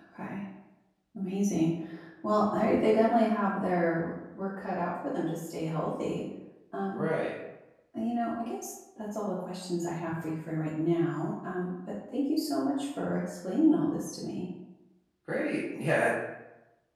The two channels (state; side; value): identical; both; correlation 1.00